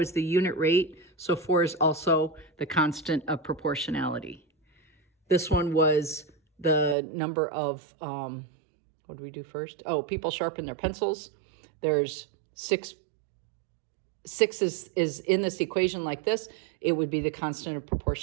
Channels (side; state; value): left; drops out; at 7.0 s